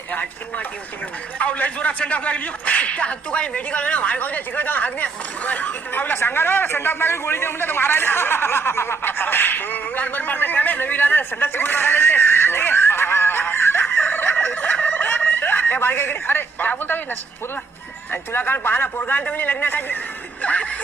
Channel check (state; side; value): quieter; left; 4.4 dB